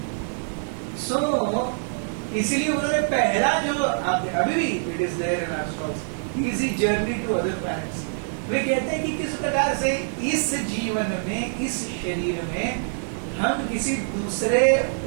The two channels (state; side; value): silent; left; digital silence